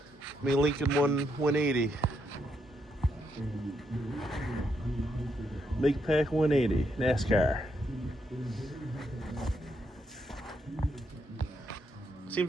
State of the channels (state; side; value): normal; both; correlation 0.78